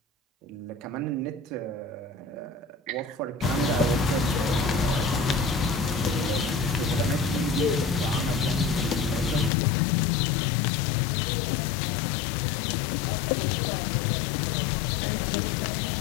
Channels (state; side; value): drops out; right; at 9.5 s